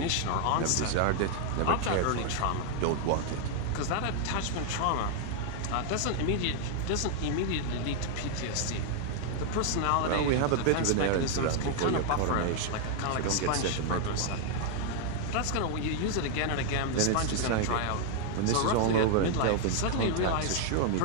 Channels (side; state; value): both; different; correlation 0.00